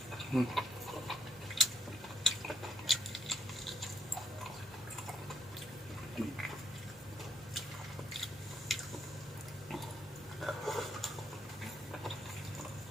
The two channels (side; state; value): both; normal; correlation 0.72